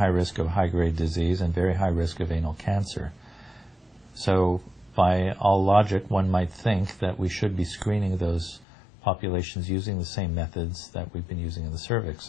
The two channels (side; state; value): right; drops out; at 8.7 s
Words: risk of high-grade disease, and very high risk of anal cancer. So by all logic, one might think that we should be screening those populations using the same methods that we've been using in the